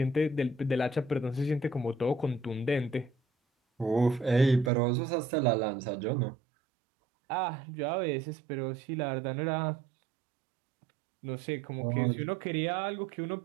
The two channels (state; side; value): drops out; left; at 4.7 s